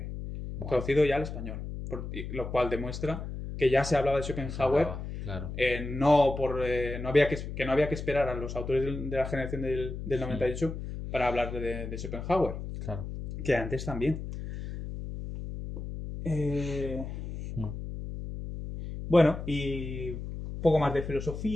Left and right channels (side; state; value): left; noise; hum, 7 dB below the sound